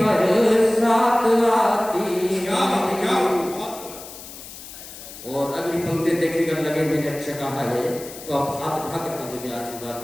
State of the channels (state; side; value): noise; left; hiss, 14 dB below the sound